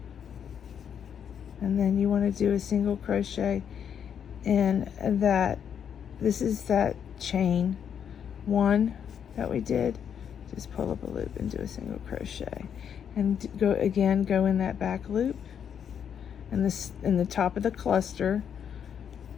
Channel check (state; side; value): quieter; right; 8.2 dB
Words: and then you want to do a single crochet And that this is that chain 1 that we did. Just pull up a loop and do a single crochet, and go in that back loop, and this in the top of the cluster,